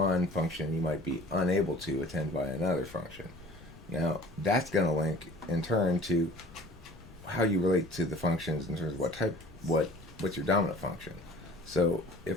function, you might be unable to attend via another function. Now, that's going to link in turn to how you relate to the functions in terms of what's your dominant function. So,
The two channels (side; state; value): left; noise; rumble, 20 dB below the sound